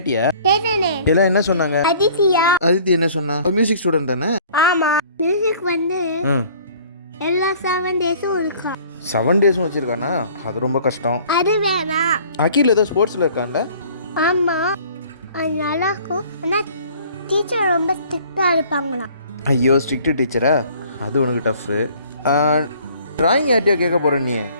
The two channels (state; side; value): inverted; both; correlation -0.53